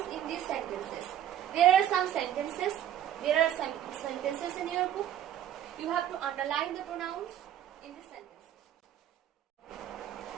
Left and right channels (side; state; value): left; quieter; 10.9 dB